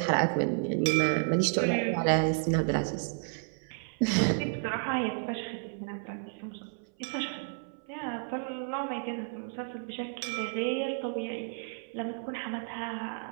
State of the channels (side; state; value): left; silent; 55 dB below the other